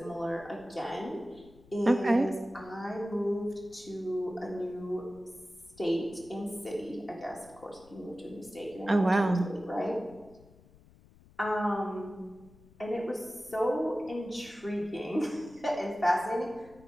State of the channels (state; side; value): noise; left; rumble, 25 dB below the sound